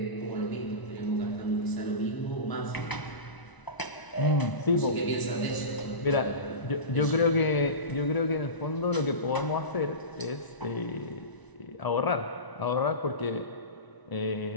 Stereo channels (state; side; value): late; right; 1.0 ms